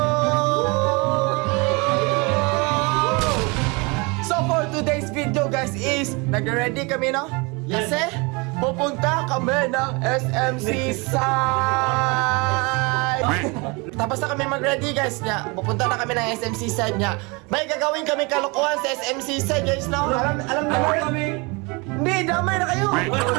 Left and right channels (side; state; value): left; quieter; 28.2 dB